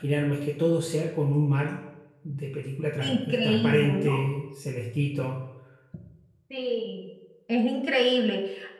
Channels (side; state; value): both; identical; correlation 1.00